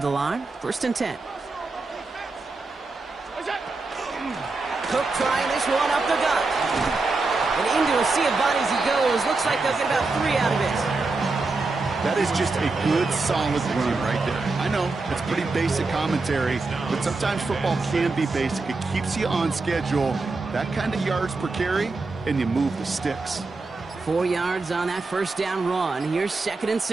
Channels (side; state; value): left; quieter; 3.7 dB